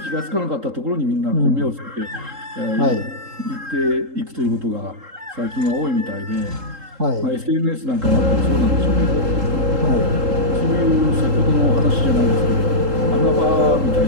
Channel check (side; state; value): left; late; 3.8 ms